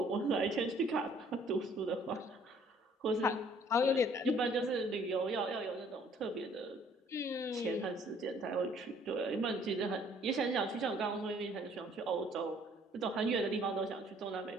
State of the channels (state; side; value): normal; both; correlation 0.60